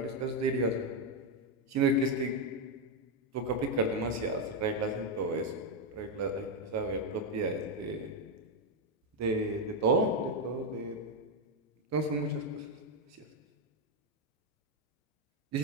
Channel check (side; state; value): both; normal; correlation 0.03